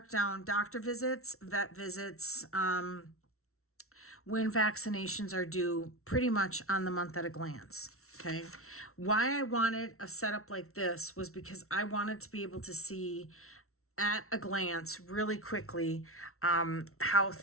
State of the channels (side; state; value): right; late; 0.63 ms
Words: down doctor visits, vet visits, when vaccinations are due, pretty much on the month at a glance. Okay. Why I wanted a setup like this was because I wanted to be able to see at a glance really quickly how